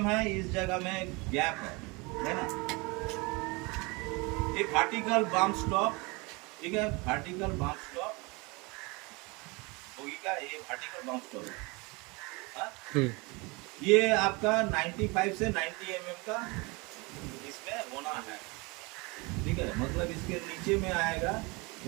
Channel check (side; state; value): left; quieter; 26.9 dB